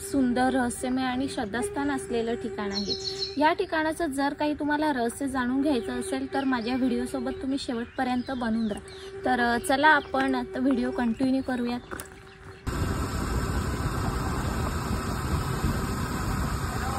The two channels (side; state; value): both; identical; correlation 1.00